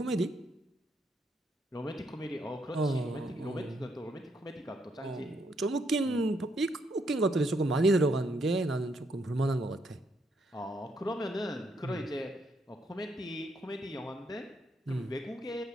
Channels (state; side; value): normal; both; correlation 0.75